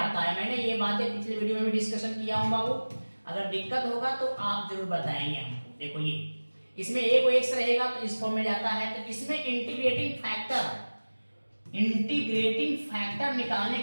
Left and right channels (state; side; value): inverted; both; correlation -1.00